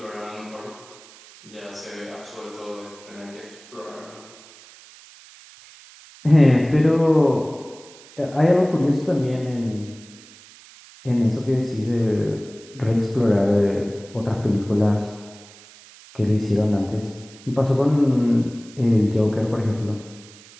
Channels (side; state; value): right; noise; hiss, 22 dB below the sound